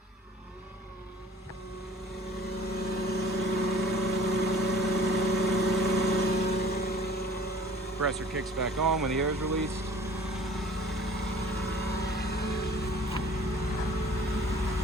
compressor kicks back on when the air is released.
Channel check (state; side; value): normal; both; correlation 0.50